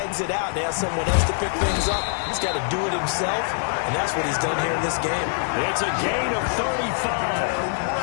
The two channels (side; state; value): right; silent; digital silence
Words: out and ask someone else to pick things up. He's got to do it himself, and that's what he's done here in this game. It's a gain of 35.